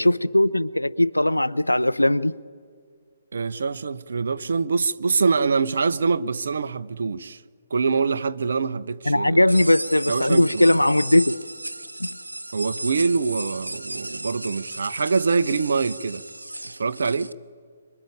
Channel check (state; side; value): inverted; both; correlation -0.93